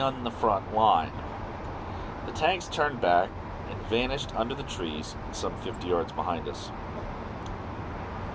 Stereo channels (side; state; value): both; identical; correlation 1.00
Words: the front line. The tanks turned back and vanished under the trees some 50 yards behind us.